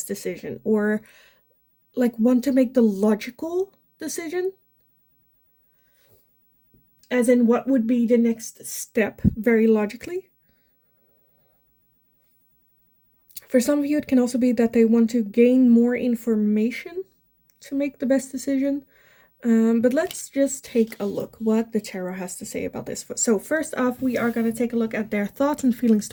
decision, or like want to make the logical decision, as in what would be the next step very logically. For some of you, it can also be that they want to gain more information to make the best decision. But let's just take a look what the tarot has to say about this. So first off, we are going to take a look at their thoughts and feelings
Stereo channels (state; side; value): identical; both; correlation 1.00